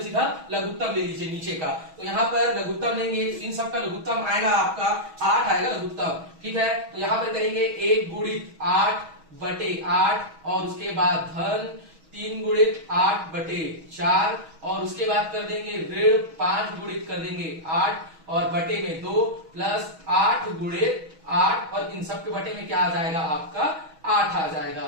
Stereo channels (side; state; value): left; late; 6.2 ms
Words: सीधा लघुत्तम ले लीजिए नीचे का। तो यहाँ पर लघुत्तम लेंगे, इन सब का लघुत्तम आएगा आपका 8 आएगा लघुत्तम, ठीक है। तो यहाँ पर करेंगे 1 गुणित 8 बटे 8, और उसके बाद धन 3 गुणित 8 बटे 4, और उसके बाद कर देंगे ऋण 5 गुणित कर देंगे 8, और बटे में 2 प्लस 8 गुणित 8 और इन सब के बटे में क्या आ जाएगा आपका 8 आ जाएगा।